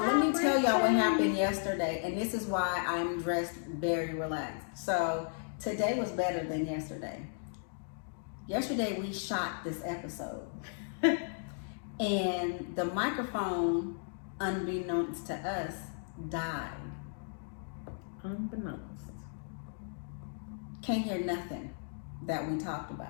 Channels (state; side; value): silent; right; digital silence